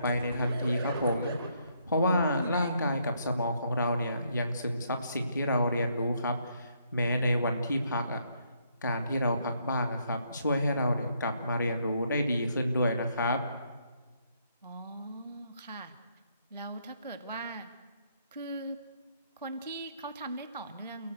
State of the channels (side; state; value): both; inverted; correlation -0.72